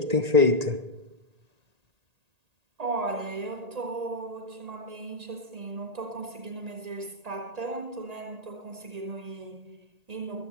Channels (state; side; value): late; left; 1.8 ms